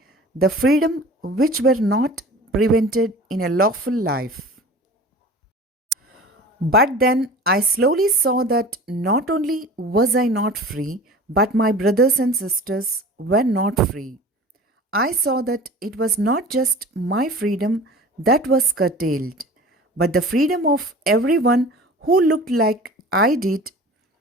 the freedom which were not prevented in a lawful life. But then I slowly saw that not only was I not free, but my brothers and sisters were not free. I saw that it was not just my freedom that was curtailed, but the freedom of everyone who looked like I did.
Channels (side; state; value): both; normal; correlation 0.40